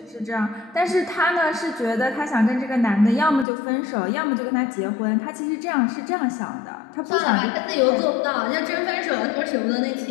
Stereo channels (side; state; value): right; drops out; at 3.5 s